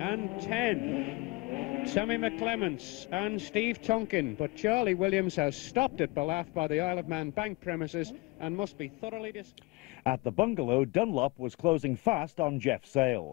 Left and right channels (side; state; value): right; quieter; 23.7 dB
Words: 10. Sammy McClements and Steve Tonkin, but Charlie Williams has stopped at Ballaugh by the Isle of Man bank premises and must be thoroughly At the bungalow, Dunlop was closing fast on Jeff